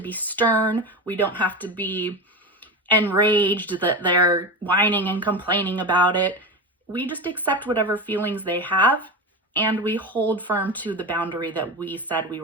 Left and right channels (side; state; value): both; normal; correlation 0.23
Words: stern. We don't have to be enraged that they're whining and complaining about it. We just accept whatever feelings they have, and we hold firm to the boundary that we said we